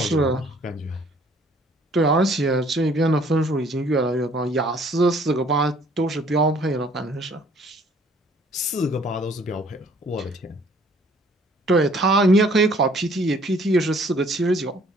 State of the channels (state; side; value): normal; both; correlation 0.58